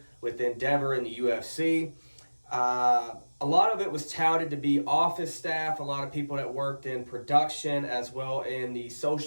with Endeavor and the UFC. A lot of it was touted to be office staff, a lot of people that worked in production as well in the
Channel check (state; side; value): inverted; both; correlation -1.00